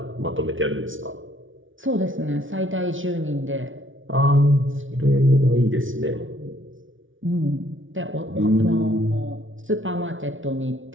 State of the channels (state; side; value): late; left; 0.57 ms